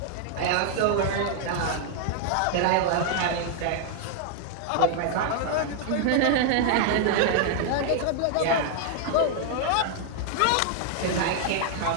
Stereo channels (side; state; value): both; different; correlation 0.00